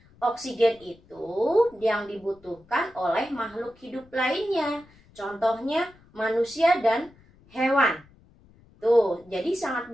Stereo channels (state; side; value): noise; left; rumble, 28 dB below the sound